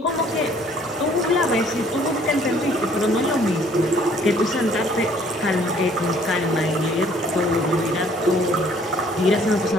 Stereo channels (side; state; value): both; normal; correlation 0.59